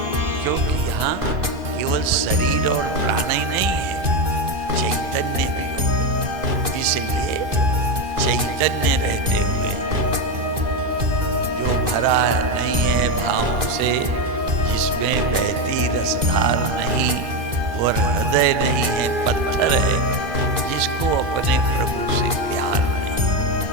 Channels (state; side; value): late; left; 2.5 ms